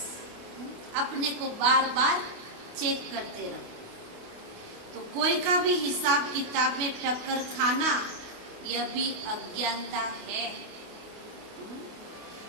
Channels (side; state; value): left; late; 28 ms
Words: अपने को बार बार चेक करते रहो। तो कोई का भी हिसाब किताब में टक्कर खाना यह भी अज्ञानता है।